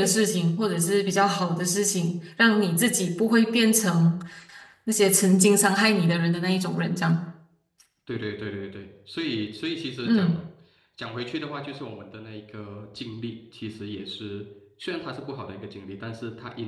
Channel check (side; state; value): both; identical; correlation 1.00